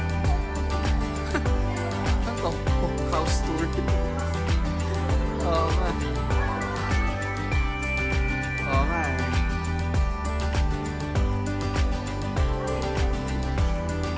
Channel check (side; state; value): both; identical; correlation 1.00